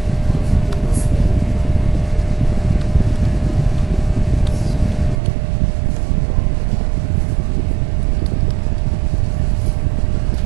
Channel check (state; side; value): drops out; left; at 5.2 s